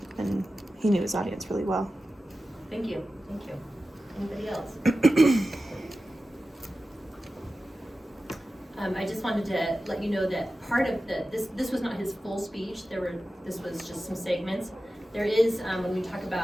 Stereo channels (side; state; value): both; normal; correlation 0.94